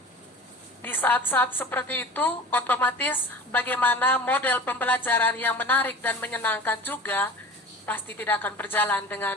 di saat-saat seperti itu, otomatis bagaimana model pembelajaran yang menarik dan menyenangkan juga pasti tidak akan berjalan dengan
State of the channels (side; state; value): both; normal; correlation 0.39